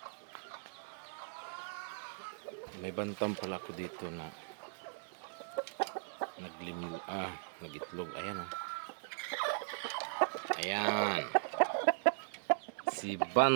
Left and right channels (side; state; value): left; silent; digital silence